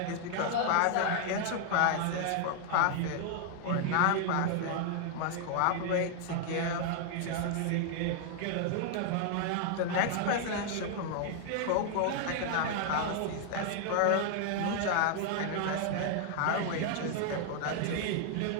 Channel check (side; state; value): both; different; correlation 0.00